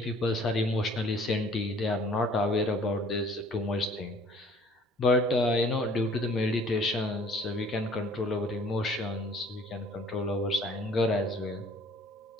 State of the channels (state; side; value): normal; both; correlation 0.54